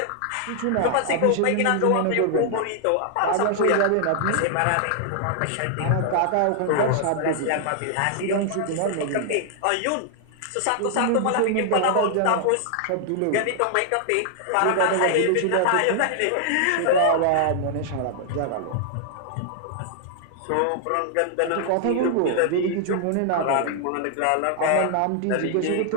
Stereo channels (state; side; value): different; both; correlation 0.00